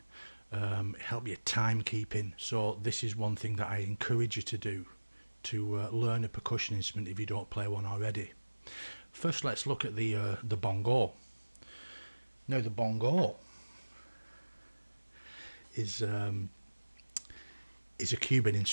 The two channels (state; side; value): inverted; both; correlation -1.00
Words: help your timekeeping. So this is one thing that I encourage you to do, to learn a percussion instrument if you don't play one already. First, let's look at the bongo. Now the bongo is a Cuban